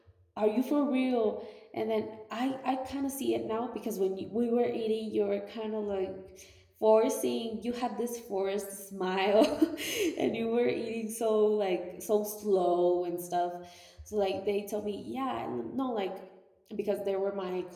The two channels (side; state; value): both; identical; correlation 1.00